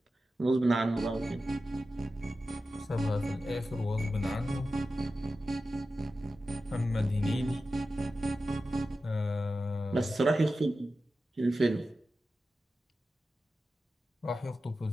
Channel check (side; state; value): both; normal; correlation 0.93